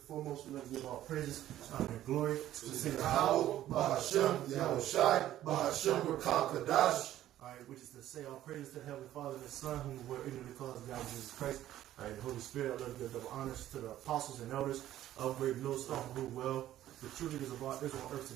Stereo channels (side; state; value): left; quieter; 13.0 dB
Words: foremost, we want to give all praises, honor, and glory to the Savior. Bahashem, Yahushai, Bahashem, Rakakadash. All right, which is to say all praises to the Heavenly Father and the Son, whom we were ignorant because of God, Jesus Christ. All right, the Holy Spirit, I love to give double honors to the apostles and elders of Great Millstone, who well. The true leaders of our Israel on earth